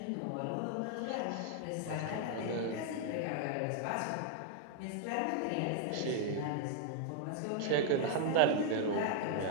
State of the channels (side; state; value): both; different; correlation 0.00